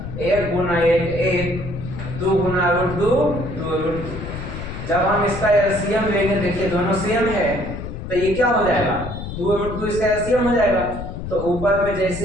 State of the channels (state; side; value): noise; left; rumble, 8 dB below the sound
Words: 1 गुना 1 1, 2 गुना √2 2√2। जब हम इसका एलसीएम लेंगे, देखिए दोनों सेम है, तो ये क्या हो जाएगा 2√2 इसका एलसीएम हो जाएगा, तो ऊपर में